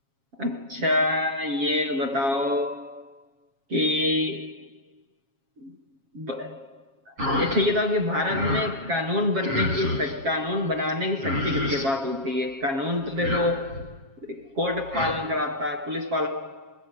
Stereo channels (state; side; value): late; left; 7.3 ms